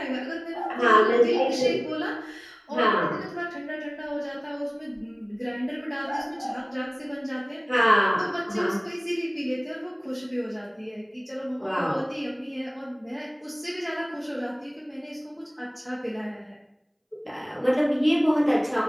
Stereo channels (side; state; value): both; identical; correlation 1.00